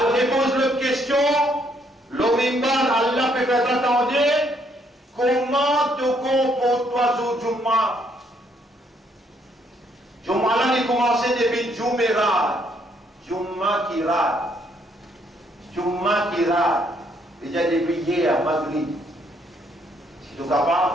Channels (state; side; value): normal; both; correlation 0.70